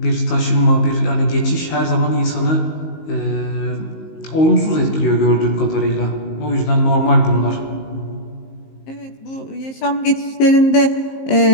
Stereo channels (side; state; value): right; late; 19 ms